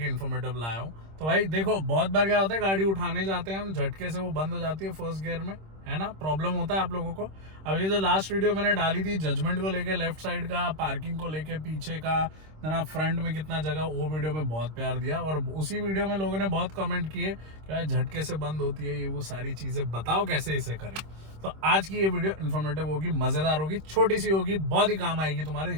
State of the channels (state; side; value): late; left; 26 ms